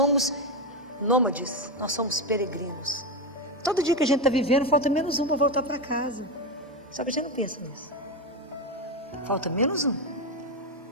nômades, nós somos peregrinos. Todo dia que a gente está vivendo, falta menos um para voltar para casa. Só que a gente não pensa nisso. Falta menos um.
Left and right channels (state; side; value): normal; both; correlation 0.12